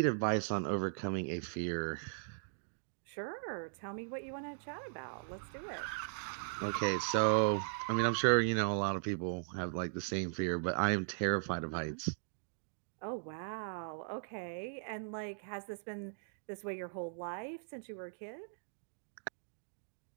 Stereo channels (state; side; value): silent; left; digital silence